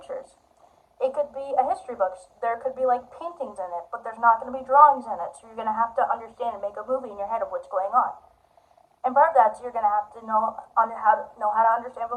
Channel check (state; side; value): identical; both; correlation 1.00